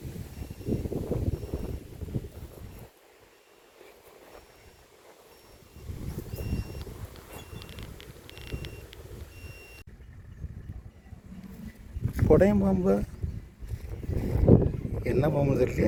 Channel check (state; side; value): identical; both; correlation 1.00